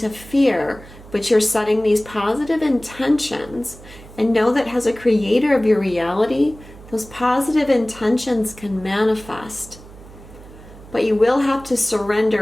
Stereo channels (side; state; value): right; noise; hum, 19 dB below the sound